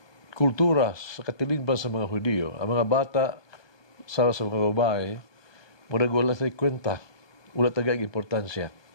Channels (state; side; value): late; right; 1.2 ms